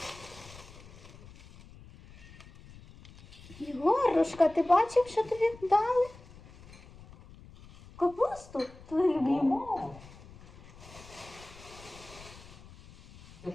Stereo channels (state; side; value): noise; left; rumble, 20 dB below the sound